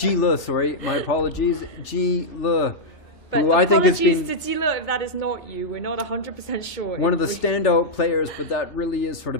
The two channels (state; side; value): late; right; 3.4 ms